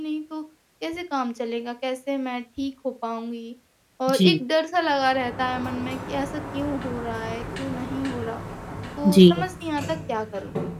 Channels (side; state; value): both; identical; correlation 1.00